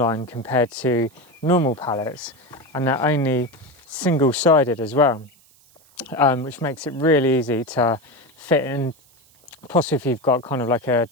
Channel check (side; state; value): right; noise; hiss, 30 dB below the sound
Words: compared to normal pallets, and they're only single-sided as well, which makes it really easy to fit in, possibly if you've got kind of like a